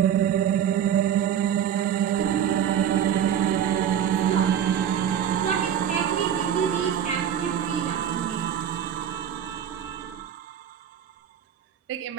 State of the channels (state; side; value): quieter; left; 9.3 dB